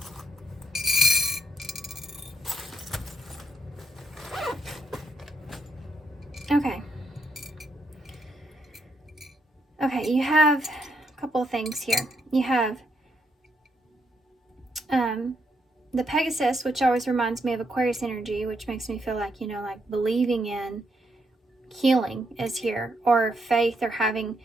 Okay, you have a couple of things here. You have the Pegasus, which always reminds me of Aquarius energy, which makes me feel like, you know, like believing in, healing is here, or faith, or having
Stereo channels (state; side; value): normal; both; correlation 0.77